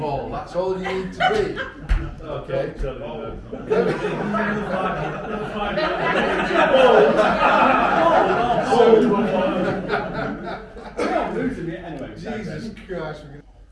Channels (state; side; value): identical; both; correlation 1.00